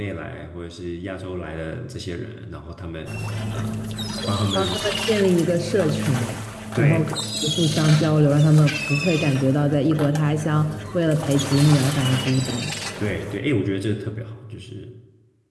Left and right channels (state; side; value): identical; both; correlation 1.00